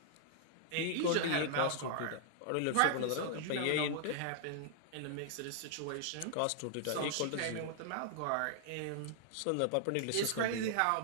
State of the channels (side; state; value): both; different; correlation -0.01